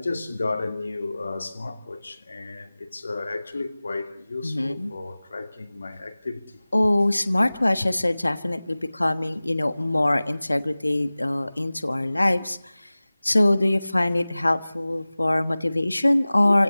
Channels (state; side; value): inverted; both; correlation -0.99